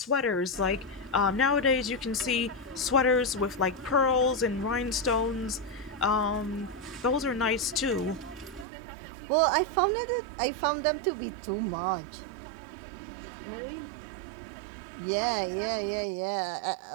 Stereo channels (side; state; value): left; drops out; at 8.7 s